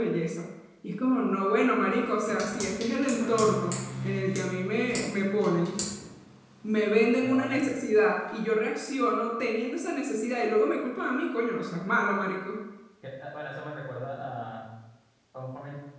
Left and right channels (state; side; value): identical; both; correlation 1.00